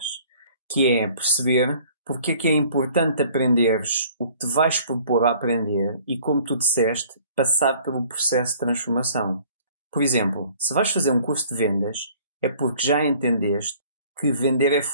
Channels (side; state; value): both; inverted; correlation -0.53